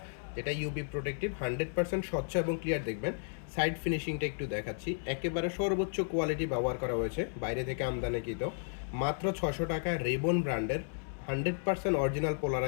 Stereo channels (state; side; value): silent; right; 55 dB below the other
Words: যেটা ইউবি প্রোটেক্টিভ 100% স্বচ্ছ এবং ক্লিয়ার। দেখবেন সাইড ফিনিশিংটা একটু দেখাচ্ছি, একেবারে সর্বোচ্চ কোয়ালিটি ব্যবহার করা হয়েছে, বাইরে থেকে আমদানিকৃত। মাত্র 600 টাকায় রেবন ব্র্যান্ডের 100% অরিজিনাল